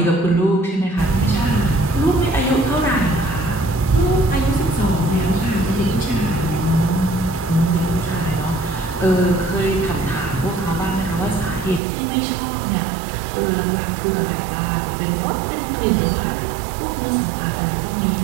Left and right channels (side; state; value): left; drops out; at 11.8 s